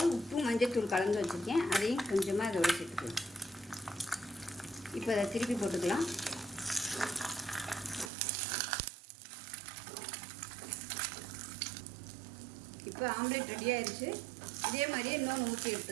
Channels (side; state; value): left; drops out; at 8.1 s